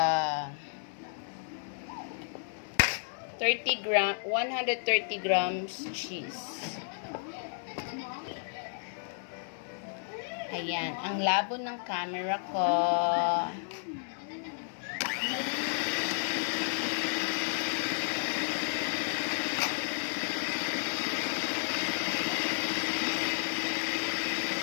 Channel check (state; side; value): silent; right; digital silence